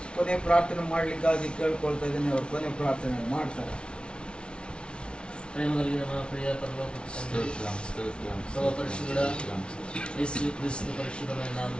ಕೊನೆ ಪ್ರಾರ್ಥನೆ ಮಾಡಲಿಕ್ಕಾಗಿ ಕೇಳ್ಕೊಳ್ತಾ ಇದ್ದೀನಿ. ಅವರು ಕೊನೆ ಪ್ರಾರ್ಥನೆ ಮಾಡ್ತಾರೆ. ಪ್ರಿಯ ಪರಲೋಕ ತಂದೆ, ಸರ್ವ ಪರಿಶುದ್ಧ ಯೇಸು ಕ್ರಿಸ್ತ ಪರಿಶುದ್ಧమైన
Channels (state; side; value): late; right; 0.057 ms